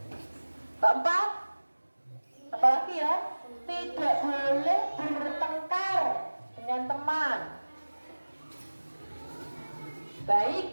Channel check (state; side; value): inverted; both; correlation -1.00